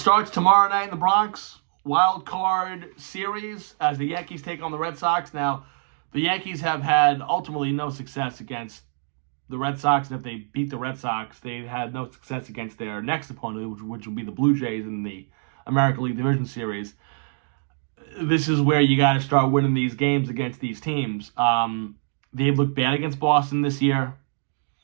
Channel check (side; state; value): left; silent; digital silence